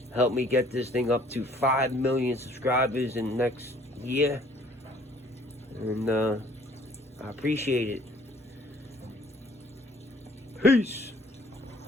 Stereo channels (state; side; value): normal; both; correlation 0.57